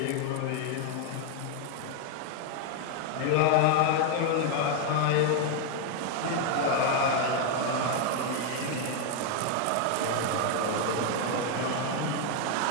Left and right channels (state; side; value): different; both; correlation 0.01